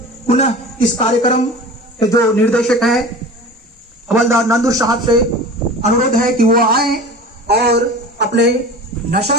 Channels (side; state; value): both; normal; correlation 0.37